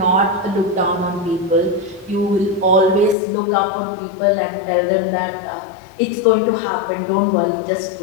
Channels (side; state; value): right; drops out; at 3.2 s